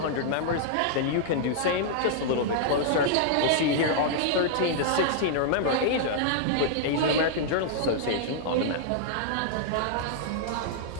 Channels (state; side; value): different; both; correlation -0.02